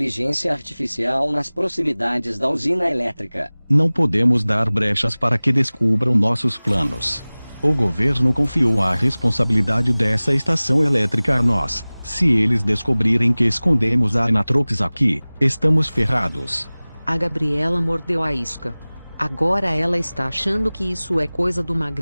artificial nas proximidades da usina elétrica. Não podemos dar brechas para que descubram nossos planos. O governo confiou a responsabilidade dessa estação elétrica a nós. Se eles descobrirem que escondemos a Anatrox aqui, estamos ferrados. A Gabriela mordeu a isca. Agora ela está achando que isso é coisa do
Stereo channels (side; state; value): both; inverted; correlation -0.99